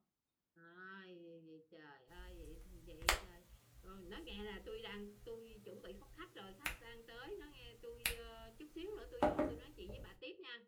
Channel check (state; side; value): identical; both; correlation 1.00